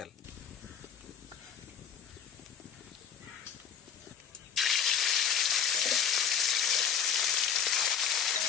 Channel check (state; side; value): quieter; right; 7.7 dB